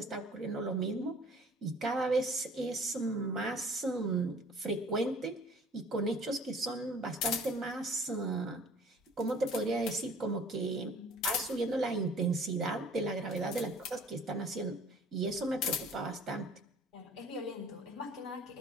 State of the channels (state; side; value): normal; both; correlation 0.51